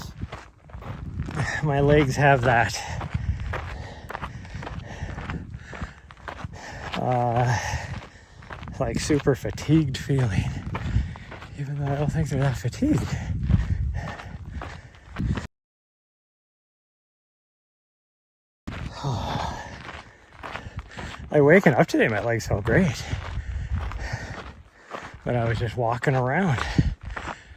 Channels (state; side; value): identical; both; correlation 1.00